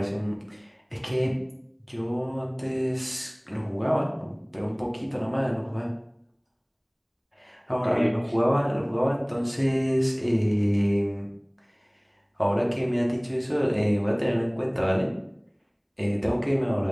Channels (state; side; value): identical; both; correlation 1.00